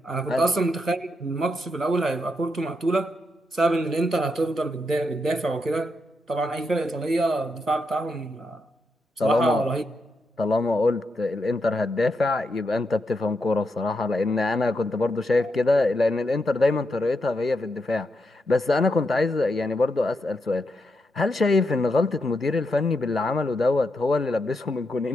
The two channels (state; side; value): normal; both; correlation 0.83